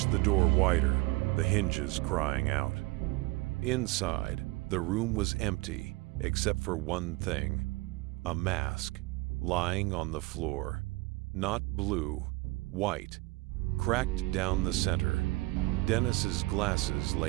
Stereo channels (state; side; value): quieter; left; 22.4 dB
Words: the door wider, the hinges crying out. Inside, the room was empty, except for one thing. A mask, lying on the floor. Not blue, white, cracked down the center. Dennis's glasses